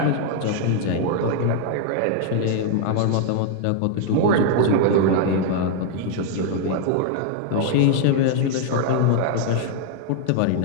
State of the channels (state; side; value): different; both; correlation 0.00